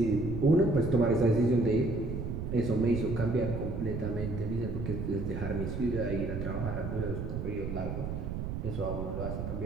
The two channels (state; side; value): noise; right; rumble, 5 dB below the sound